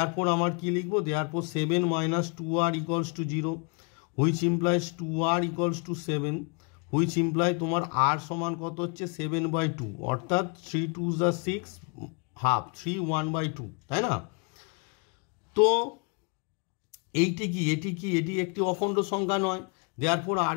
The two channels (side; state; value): right; quieter; 35.7 dB